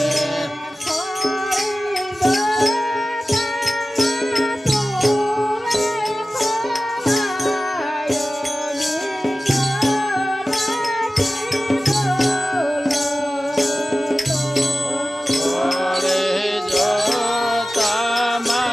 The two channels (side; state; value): both; normal; correlation 0.96